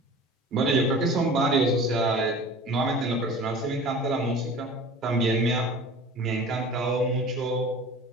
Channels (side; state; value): both; normal; correlation 0.40